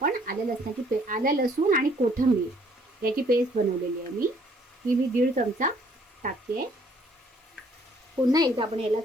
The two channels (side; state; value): both; normal; correlation 0.62